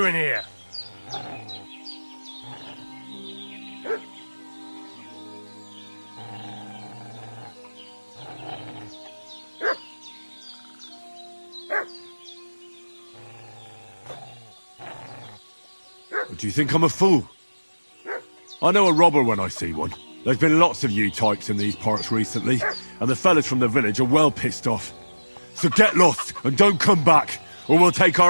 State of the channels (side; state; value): both; inverted; correlation -1.00